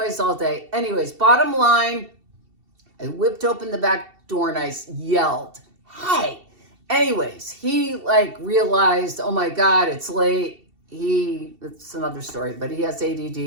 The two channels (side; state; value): left; late; 2.7 ms